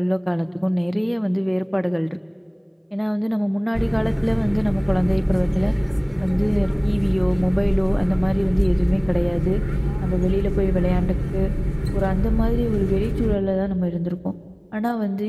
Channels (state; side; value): identical; both; correlation 1.00